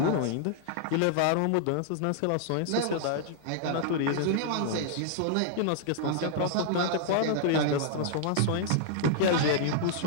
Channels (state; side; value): different; both; correlation -0.01